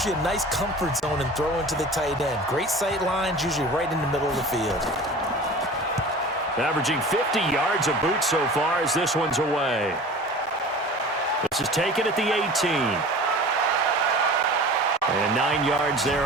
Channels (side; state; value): both; normal; correlation 0.39